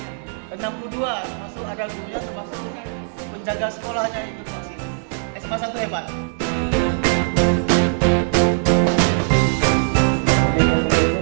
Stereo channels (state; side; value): silent; left; digital silence